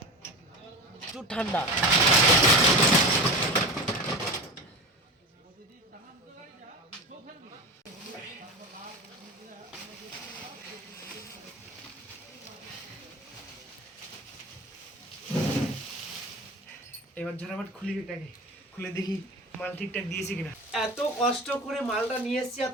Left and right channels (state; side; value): normal; both; correlation 0.29